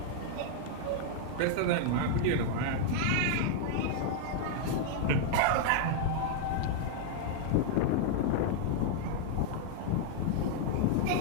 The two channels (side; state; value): both; different; correlation -0.01